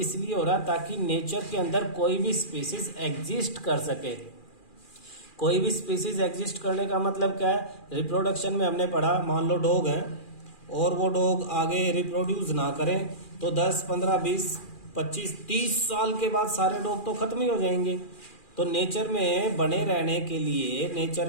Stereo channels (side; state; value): right; late; 2.4 ms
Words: हो रहा है ताकि नेचर के अंदर कोई भी स्पीसीज एग्जिस्ट कर सके। कोई भी स्पीसीज एग्जिस्ट करने का मतलब क्या है? रिप्रोडक्शन में हमने पढ़ा, मान लो डॉग है और वो डॉग आगे रिप्रोड्यूस ना करें तो 10, 15, 20, 25, 30 साल के बाद सारे डॉग तो खत्म ही हो जाएंगे। तो नेचर में बने रहने के लिए,